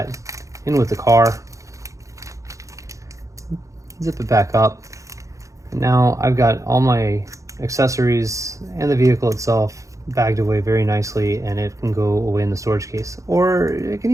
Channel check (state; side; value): late; left; 0.15 ms